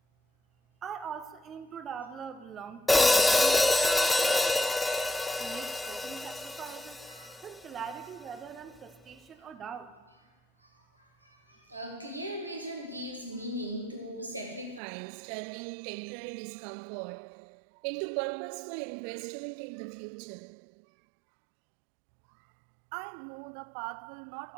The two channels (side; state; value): left; drops out; at 14.8 s